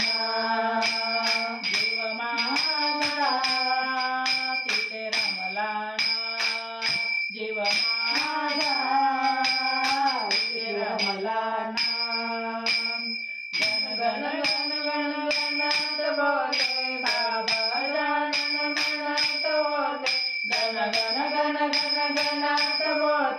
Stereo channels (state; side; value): identical; both; correlation 1.00